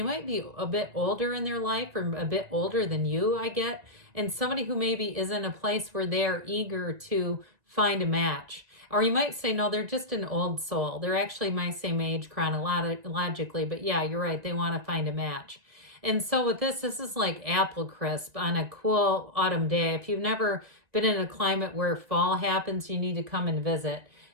might be a bit older in their life or a bit older than you, I get. And somebody who maybe is in a place where they're eager to find a match. Or you might say, no, they're just an old soul. They're actually my same age chronologically. But yeah, you're right. They want to find a match. And so with this is like apple crisp on a cool autumn day. If you've never been in a climate where fall happens, you need to come and visit.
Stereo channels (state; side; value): late; left; 1.9 ms